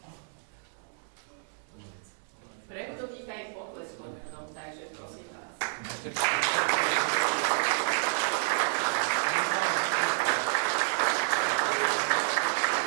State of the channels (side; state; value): left; silent; digital silence